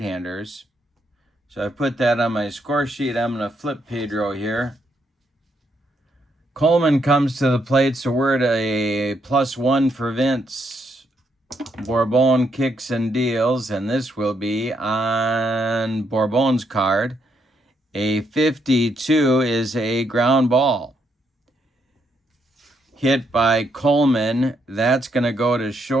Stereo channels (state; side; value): normal; both; correlation 0.76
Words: So I put that on my score sheet. I'm going to flip Pedro here. Coleman comes to the plate, so we're at a +1 for Vince. Borbon kicks and deals, and this will be on Borbon's card. A 52 is a ground ball. Hit by Coleman. That's going to go to